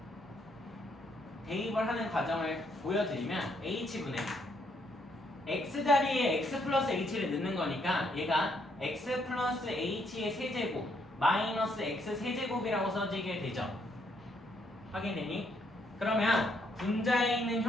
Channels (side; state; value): both; normal; correlation 0.72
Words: 대입을 하는 과정을 보여드리면 h분의 x 자리에 x 플러스 h를 넣는 거니까 얘가 x 플러스 h의 세제곱 마이너스 x 세제곱이라고 써지게 되죠. 확인되니? 그러면 분자에 있는